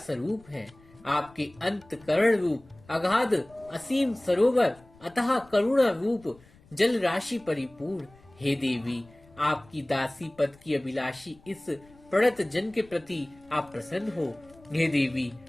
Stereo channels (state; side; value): noise; left; rumble, 26 dB below the sound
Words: है। आपके अंतकरण रूप अगाध असीम सरोवर अतः करुणा रूप जल राशि परिपूर्ण। हे देवी, आपकी दासी पद की अभिलाषी इस प्रणत जन के प्रति आप प्रसन्न हो। हे देवी,